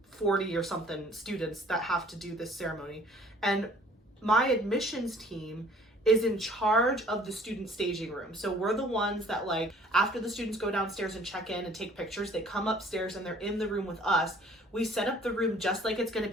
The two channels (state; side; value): normal; both; correlation 0.54